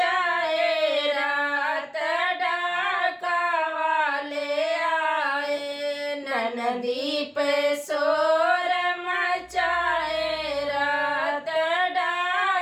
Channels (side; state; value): both; identical; correlation 1.00